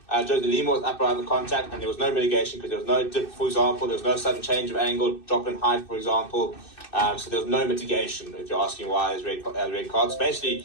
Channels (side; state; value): right; late; 2.6 ms